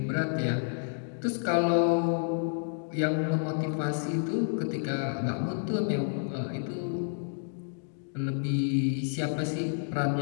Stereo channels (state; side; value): silent; right; digital silence